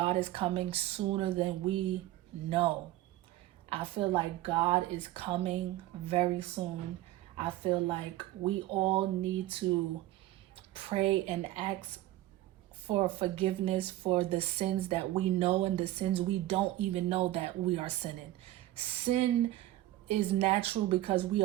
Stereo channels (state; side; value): quieter; left; 15.5 dB